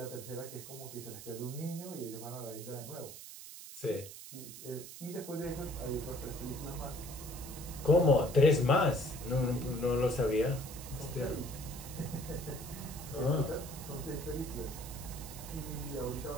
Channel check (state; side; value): noise; right; hiss, 12 dB below the sound